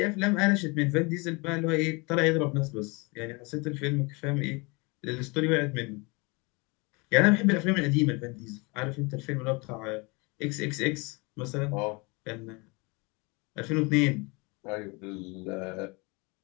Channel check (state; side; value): quieter; right; 27.9 dB